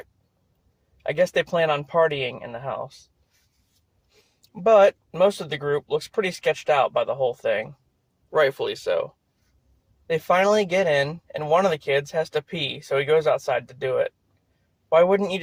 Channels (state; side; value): identical; both; correlation 1.00